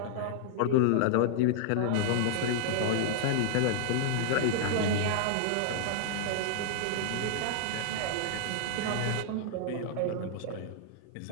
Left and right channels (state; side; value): different; both; correlation -0.01